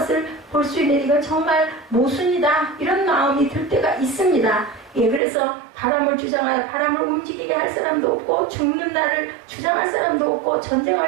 볼 수 있는, 이건 정말 모순이다, 이런 마음이 들 때가 있습니다. 그래서 바람을 주장하여 바람을 움직이게 할 사람도 없고, 죽는 날을 주장할 사람도 없고,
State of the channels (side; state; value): left; drops out; at 5.2 s